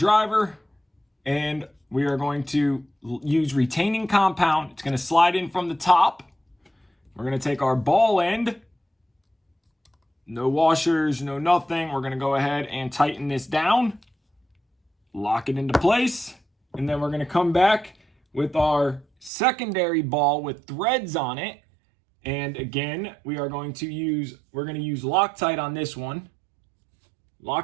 and we are going to use retaining compound. It's going to slide in from the top. We're going to take our ball end, no washers, no nothing. We're going to go ahead and tighten this down, lock it into place, and then we're going to come back with our secondary ball with threads on it. And again, we're going to use Loctite on this one.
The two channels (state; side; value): drops out; left; at 19.3 s